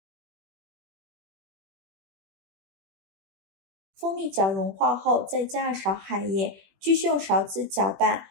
蜂蜜搅融化后，再加2勺海盐，继续用勺子搅拌，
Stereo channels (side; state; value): left; late; 21 ms